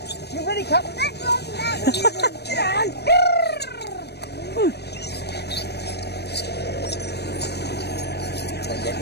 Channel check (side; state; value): right; late; 0.48 ms